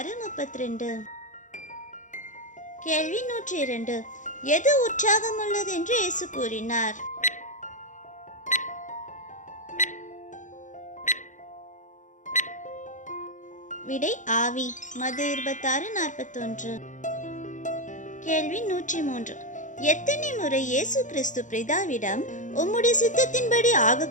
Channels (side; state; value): right; late; 0.36 ms